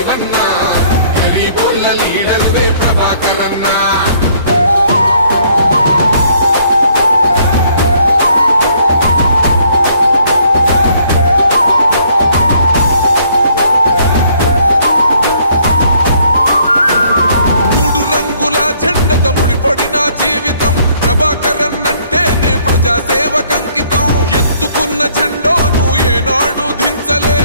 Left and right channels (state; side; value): inverted; both; correlation -0.64